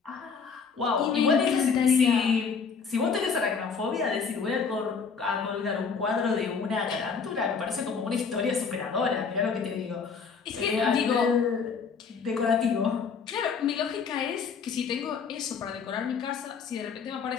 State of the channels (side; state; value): right; quieter; 5.7 dB